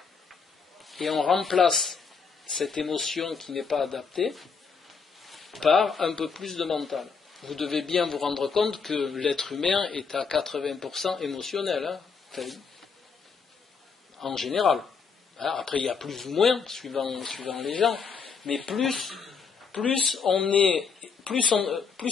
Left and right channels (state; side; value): quieter; right; 5.5 dB